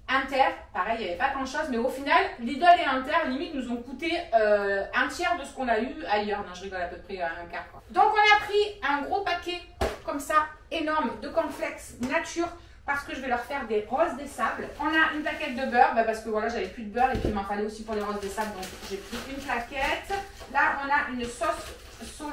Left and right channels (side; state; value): both; identical; correlation 1.00